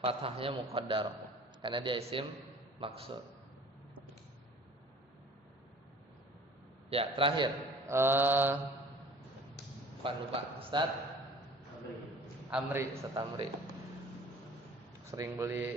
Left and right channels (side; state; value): both; normal; correlation 0.47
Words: fathahnya muqaddarah karena dia isim maksur. Ya, terakhir. Lupa, Ustaz Amri. Sering